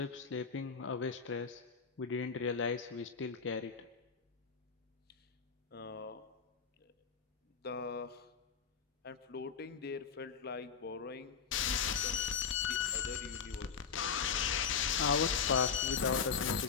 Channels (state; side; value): quieter; right; 6.3 dB